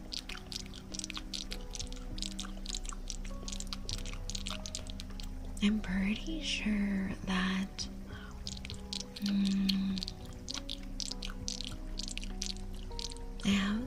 I'm pretty sure that I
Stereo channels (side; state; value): both; identical; correlation 1.00